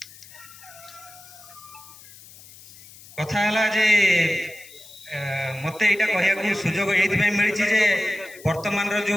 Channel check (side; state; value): left; noise; hiss, 20 dB below the sound